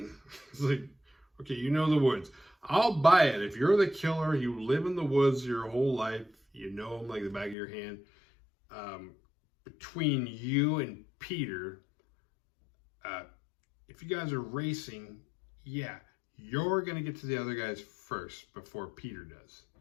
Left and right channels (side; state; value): right; drops out; at 7.6 s